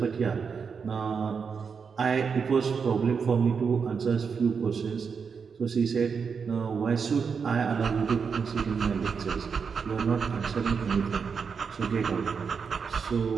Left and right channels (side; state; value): left; quieter; 5.9 dB